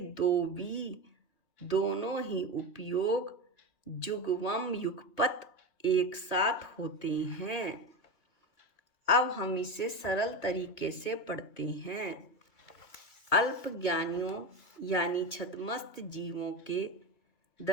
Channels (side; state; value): right; late; 2.6 ms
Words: भी दोनों ही उपयोग जुगवम युगपत एक साथ होते हैं। अब हम इसे सरल तरीके से पढ़ते हैं। अल्प ज्ञानियों यानी छद्मस्त जीवों के